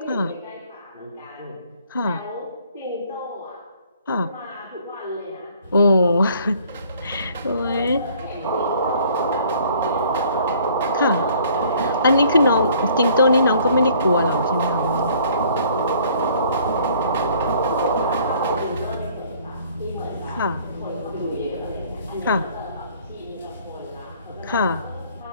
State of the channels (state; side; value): inverted; both; correlation -0.57